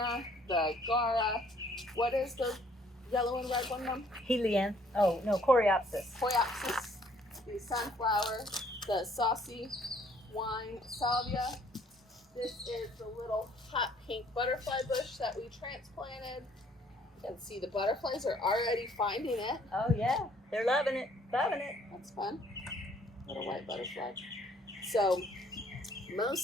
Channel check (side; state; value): both; normal; correlation 0.62